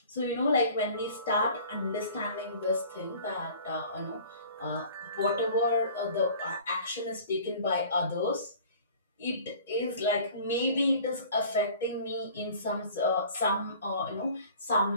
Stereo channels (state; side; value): inverted; both; correlation -0.47